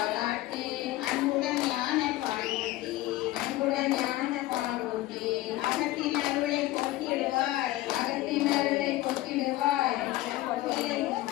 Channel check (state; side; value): quieter; right; 16.8 dB